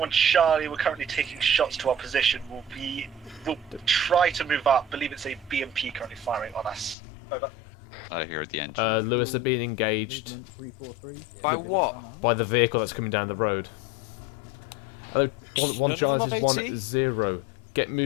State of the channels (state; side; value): drops out; right; at 7.0 s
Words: Charlie, we're currently taking shots to our position. We'll try to move up. Believe it's a BMP currently firing on us. Over. I hear the engine. Lewis are being engaged. By what? By the vehicle that's coming down the road. 1 charge is 1-0. Get